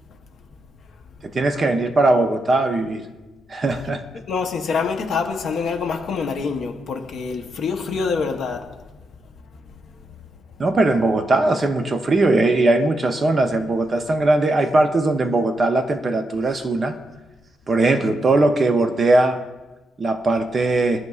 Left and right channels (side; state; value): both; normal; correlation 0.83